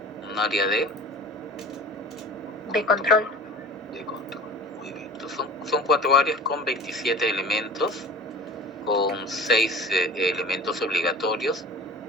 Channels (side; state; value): both; normal; correlation 0.39